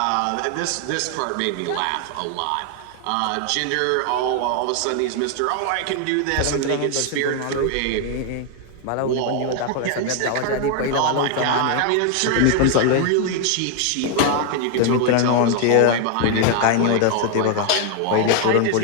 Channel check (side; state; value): both; different; correlation 0.00